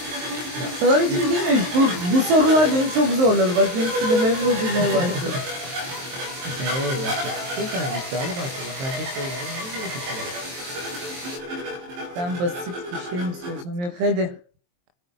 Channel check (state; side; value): late; left; 23 ms